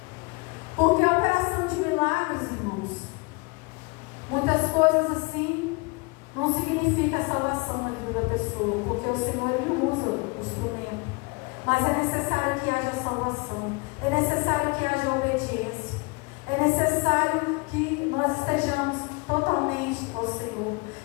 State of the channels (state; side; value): quieter; right; 27.8 dB